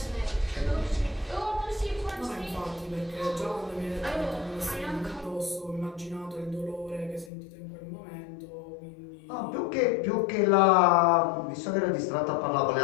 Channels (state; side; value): drops out; right; at 7.3 s